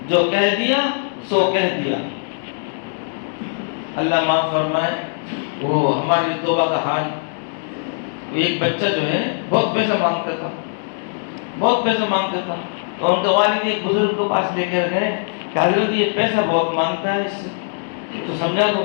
جو کہہ دیا سو کہہ دیا۔ اللہ معاف فرمائے، وہ ہماری توبہ کا حال، ایک بچہ جو ہے بہت پیسہ مانگتا تھا، بہت پیسہ مانگتا تھا، تو ان کے والد ایک بزرگ کے پاس لے کر گئے کہ حضرت یہ پیسہ بہت مانگتا ہے، اس تو سمجھا دو۔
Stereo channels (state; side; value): silent; right; digital silence